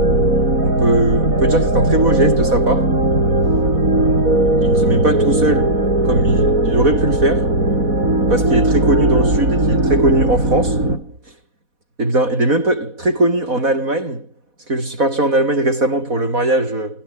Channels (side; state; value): left; late; 4.1 ms